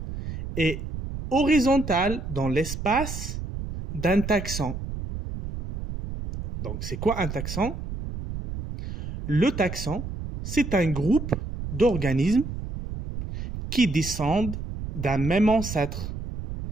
et horizontale dans l'espace d'un taxon. Donc c'est quoi un taxon? Le taxon, c'est un groupe d'organismes qui descendent d'un même ancêtre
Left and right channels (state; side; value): noise; right; rumble, 7 dB below the sound